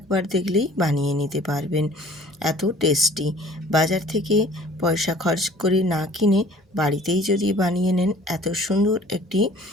দেখলেই বানিয়ে নিতে পারবেন, এত টেস্টি। বাজার থেকে পয়সা খরচ করে না কিনে বাড়িতেই যদি বানিয়ে নেন এত সুন্দর একটি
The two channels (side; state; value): both; normal; correlation 0.51